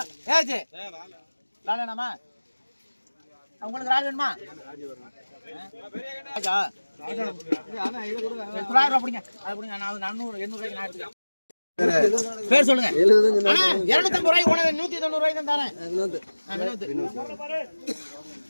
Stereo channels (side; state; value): both; inverted; correlation -1.00